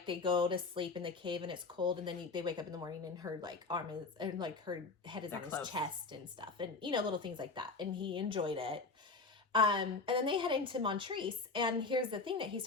they go to sleep in the cave and it's cold, and then they wake up in the morning and her like arm is, and like her head is on his chest and stuff, and little things like that, and he enjoyed it. And then they head into Montrese, and here's the thing that he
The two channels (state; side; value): quieter; right; 4.0 dB